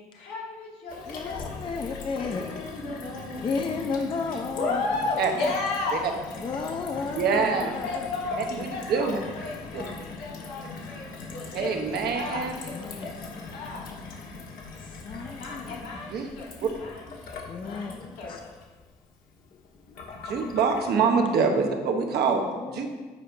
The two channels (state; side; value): normal; both; correlation 0.40